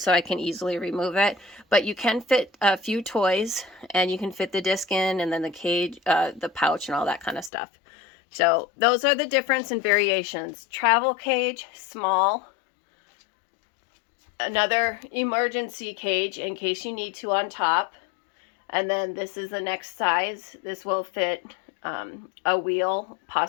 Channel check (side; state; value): right; drops out; at 7.5 s